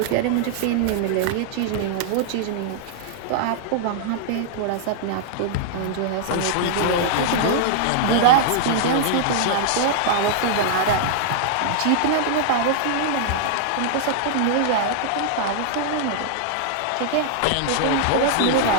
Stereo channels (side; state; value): both; different; correlation -0.01